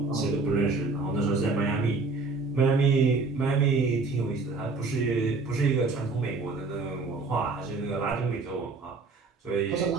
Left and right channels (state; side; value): quieter; left; 3.9 dB